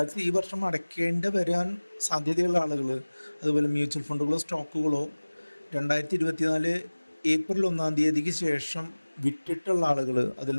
ഈ വർഷം അടയ്ക്കേണ്ടി വരാൻ സാധ്യതയുള്ള ആളുകൾ, അതുപോലെ മ്യൂച്വൽ ഫണ്ടുകളോ സ്റ്റോക്കുകളോ 2024 ഏപ്രിൽ 1-ാം തീയതിക്ക് ശേഷം വിറ്റിട്ടുള്ള ആളുകൾ, അതിൽ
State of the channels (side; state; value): both; inverted; correlation -1.00